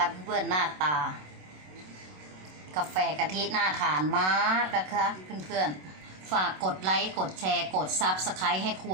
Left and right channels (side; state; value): left; late; 27 ms